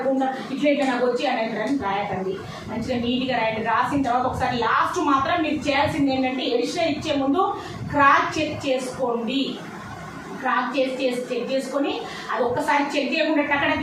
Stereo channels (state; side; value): identical; both; correlation 1.00